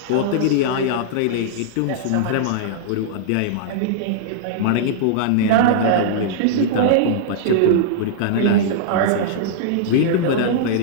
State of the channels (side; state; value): both; different; correlation -0.02